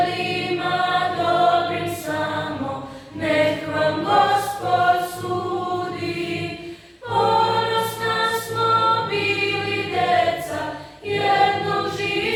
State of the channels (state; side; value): identical; both; correlation 1.00